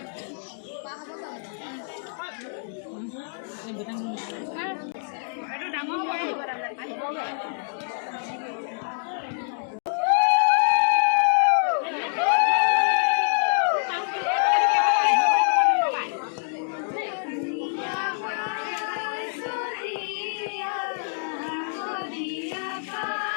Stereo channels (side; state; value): right; silent; digital silence